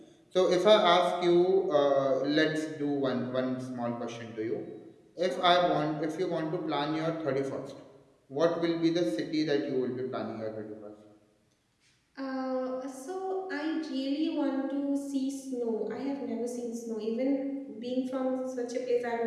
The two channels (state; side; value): identical; both; correlation 1.00